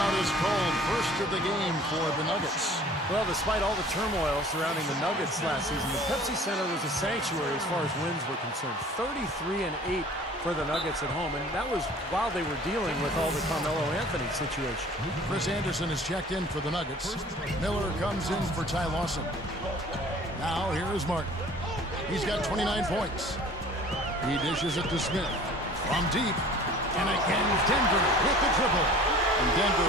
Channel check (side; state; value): both; normal; correlation 0.48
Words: is called. First of the game for the Nuggets. Well, despite all the turmoil surrounding the Nuggets last season, the Pepsi Center was a sanctuary as far as wins were concerned. 33-8 for the Nuggets at home, and that was while they were dealing with all the Carmelo Anthony situation. Chris Anderson is checked in for the Nuggets. Miller comes in for Ty Lawson. Now here is Martin. He's got 29 points. He dishes it to Smith. From deep, and again Denver with the triple. And